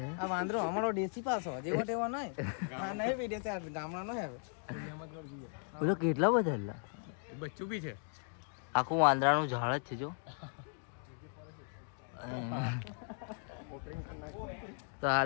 આ વાંદરો અમારો દેશી પાસો જેવો તેવો નહીં. હા, નહીં બી દેશી, ગામડાનો હે. બોલો કેટલા બધા હતા? બચ્ચું બી છે, આખું વાંદરાનું ઝાડ જ છે જો. તો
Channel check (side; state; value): right; silent; 53 dB below the other